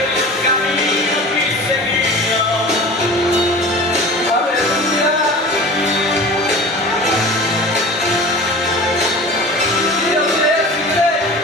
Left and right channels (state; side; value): normal; both; correlation 0.37